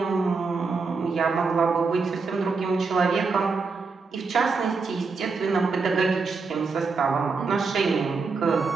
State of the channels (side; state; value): left; quieter; 4.5 dB